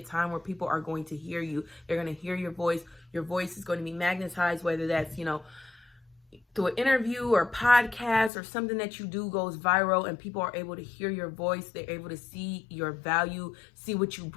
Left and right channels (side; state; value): right; drops out; at 8.3 s